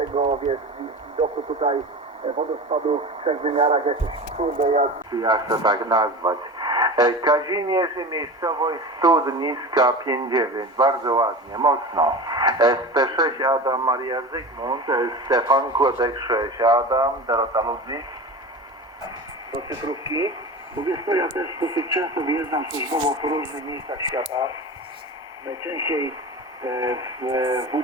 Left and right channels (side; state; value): both; normal; correlation 0.30